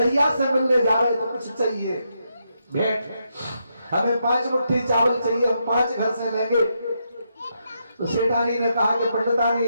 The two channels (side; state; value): both; inverted; correlation -0.81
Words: से मिलने जा रहे तो कुछ चाहिए भेंट, हमें 5 मुट्ठी चावल चाहिए, हम 5 घर से लेंगे। तो सेठानी ने कहा कि पंडितानी